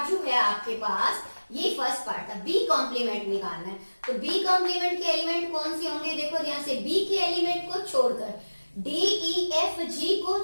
जो है आपके पास, ये फर्स्ट पार्ट था, बी कॉम्प्लीमेंट निकालना है। तो बी कॉम्प्लीमेंट के एलिमेंट कौन से होंगे? देखो ध्यान से, बी के एलिमेंट को छोड़कर, डी ई एफ जी को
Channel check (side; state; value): both; inverted; correlation -1.00